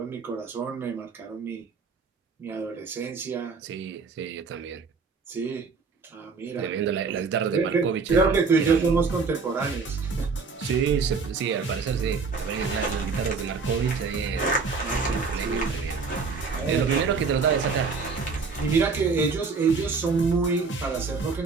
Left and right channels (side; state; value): left; quieter; 4.7 dB